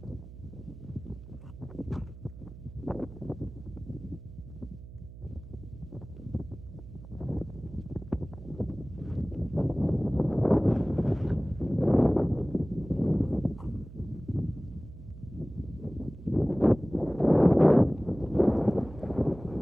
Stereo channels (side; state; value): right; noise; hum, 15 dB below the sound